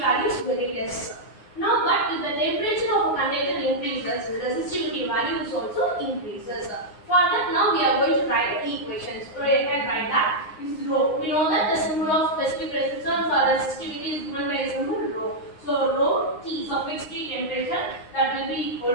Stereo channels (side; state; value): right; late; 9.6 ms